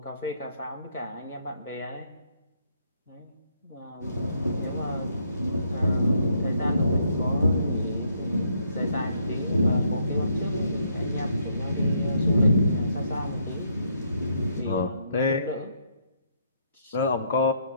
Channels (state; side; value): inverted; both; correlation -0.73